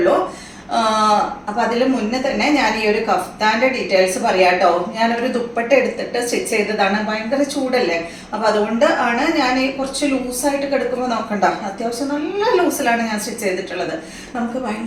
അപ്പൊ അതിന് മുന്നേ തന്നെ ഞാൻ ഈ ഒരു കഫ്താന്റെ ഡീറ്റെയിൽസ് പറയാം കേട്ടോ. ഞാനൊരു ദുപ്പട്ട എടുത്തിട്ട് സ്റ്റിച്ച് ചെയ്തതാണ്. ഭയങ്കര ചൂടല്ലേ, അപ്പൊ അതുകൊണ്ട് ആണ് ഞാൻ ഈ കുറച്ച് ലൂസായിട്ട് കിടക്കുമ്പോൾ നോക്കണ്ട, അത്യാവശ്യം നല്ല ലൂസിലാണ് ഞാൻ സ്റ്റിച്ച് ചെയ്തിട്ടുള്ളത്. നമുക്ക്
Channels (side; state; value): both; identical; correlation 1.00